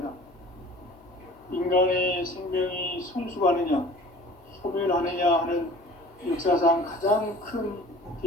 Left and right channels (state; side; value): normal; both; correlation 0.46